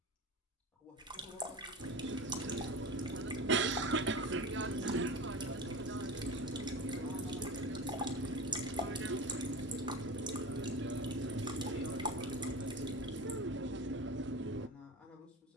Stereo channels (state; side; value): normal; both; correlation 0.29